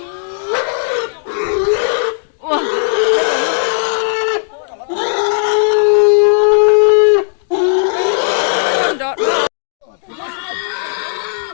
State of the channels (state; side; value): silent; right; digital silence